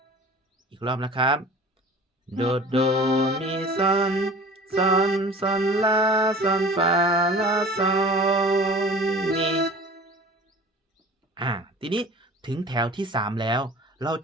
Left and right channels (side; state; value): both; normal; correlation 0.42